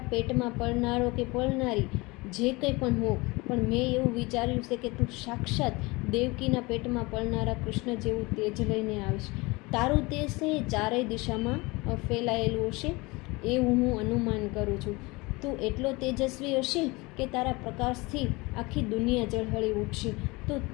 પેટમાં પળનારો કે પળનારી જે કંઈ પણ હો, પણ મેં એવું વિચાર્યું છે કે તું સાક્ષાત દેવકીના પેટમાં પળનારા કૃષ્ણ જેવું તેજ લઈને આવીશ. તારું તેજ છે એ ચારેય દિશામાં ફેલાયેલું હશે એવું હું અનુમાન કરું છું. તું એટલો તેજસ્વી હશે કે તારા પ્રકાશથી આખી દુનિયા ઝળહળી ઉઠશે. તો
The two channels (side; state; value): right; quieter; 24.1 dB